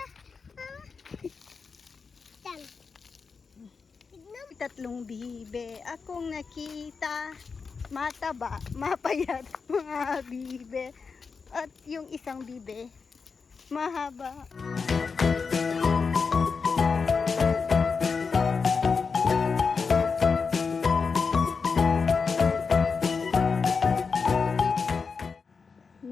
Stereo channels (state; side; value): quieter; right; 5.1 dB